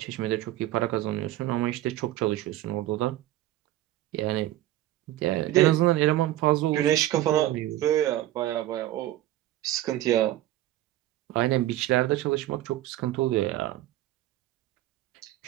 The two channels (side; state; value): left; quieter; 14.5 dB